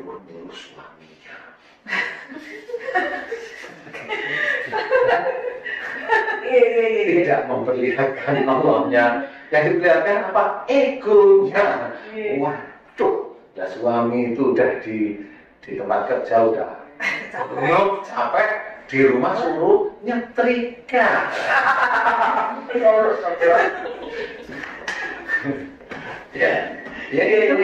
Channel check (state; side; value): identical; both; correlation 1.00